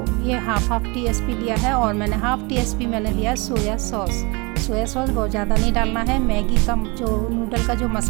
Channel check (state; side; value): quieter; left; 28.2 dB